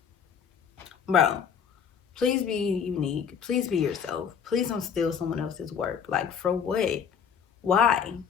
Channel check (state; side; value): quieter; right; 7.3 dB